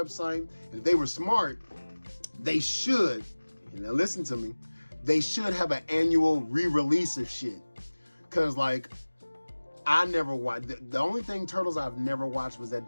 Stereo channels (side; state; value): both; inverted; correlation -1.00